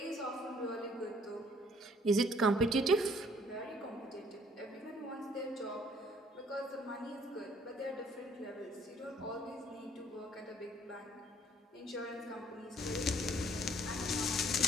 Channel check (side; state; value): both; normal; correlation 0.60